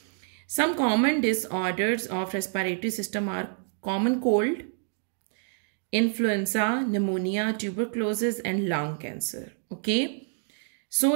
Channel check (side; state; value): left; silent; 60 dB below the other